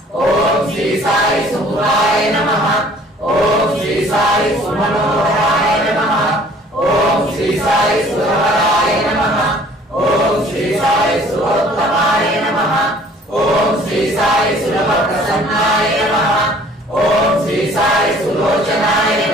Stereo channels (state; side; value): normal; both; correlation 0.54